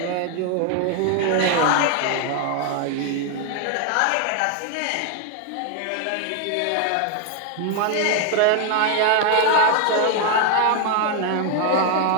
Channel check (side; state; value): both; different; correlation 0.00